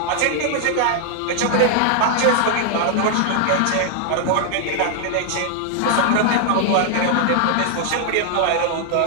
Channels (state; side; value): different; both; correlation 0.00